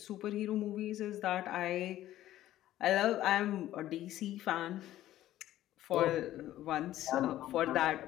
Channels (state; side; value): quieter; right; 13.8 dB